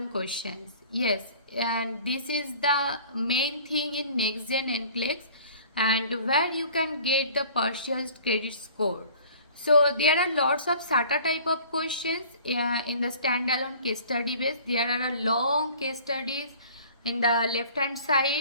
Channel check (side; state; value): both; inverted; correlation -0.48